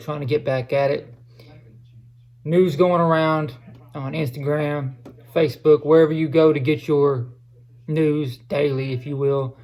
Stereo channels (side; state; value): both; identical; correlation 1.00